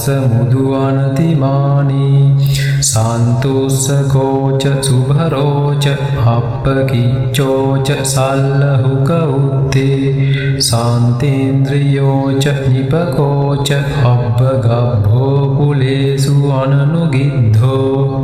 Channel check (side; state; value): both; identical; correlation 1.00